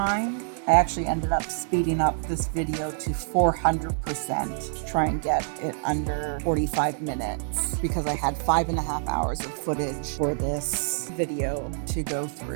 I actually ended up speeding up this video to 400% to try and get it under 45 minutes because I had 5.5 hours of footage for this video to go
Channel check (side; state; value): left; silent; digital silence